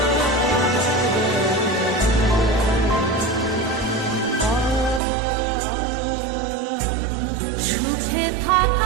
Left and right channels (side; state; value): left; drops out; at 5.0 s